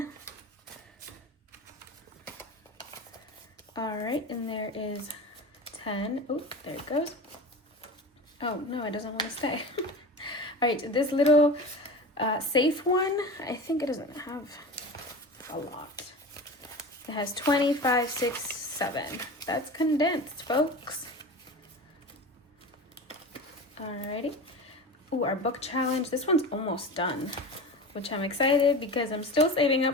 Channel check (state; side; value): normal; both; correlation 0.31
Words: All right, and there is 10. Oh, there it goes. Oh, no, it doesn't want to stay. All right, this little safe one, I think it doesn't have a lot. It has 25, 6, 7. That's condensed, folks. All righty. Ooh, our book challenge. This one's almost done, which I'm excited because I'm still saving